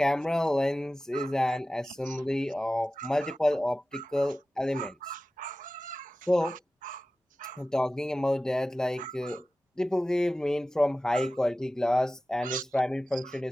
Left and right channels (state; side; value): normal; both; correlation 0.96